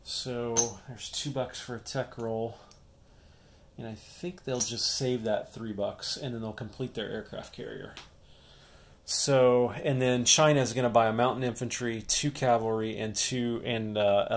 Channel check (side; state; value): both; identical; correlation 1.00